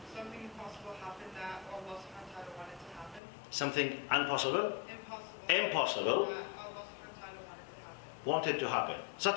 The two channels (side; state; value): right; drops out; at 3.2 s